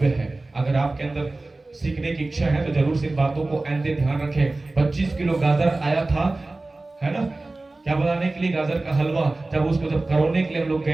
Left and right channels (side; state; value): left; quieter; 3.1 dB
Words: है। अगर आपके अंदर सीखने की इच्छा है तो जरूर से इन बातों को आइंदे ध्यान रखें। 25 किलो गाजर आया था, है ना, क्या बनाने के लिए, गाजर का हलवा। जब उसको करोने के लिए हम लोग